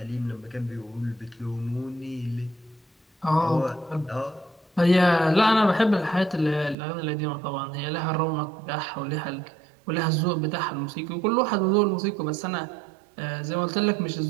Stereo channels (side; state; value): left; drops out; at 6.8 s